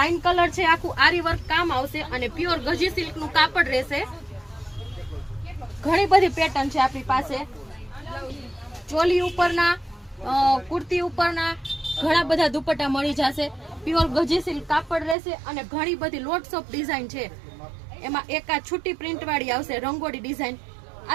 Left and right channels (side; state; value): left; drops out; at 15.2 s